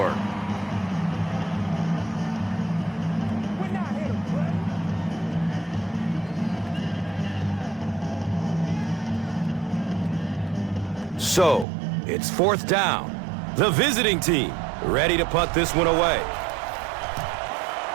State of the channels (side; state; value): left; drops out; at 11.7 s